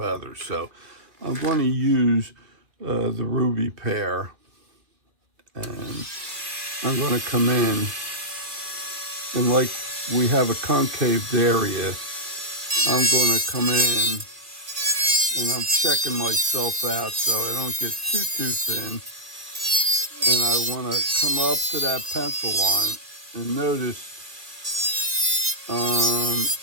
So I'm going to use the ruby pear, and I'm going to come in, and like we have a concaved area, I'm going to come in and I'm checking myself out so I don't get too thin. And I want to come up to that pencil line, and notice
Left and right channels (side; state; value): left; late; 2.3 ms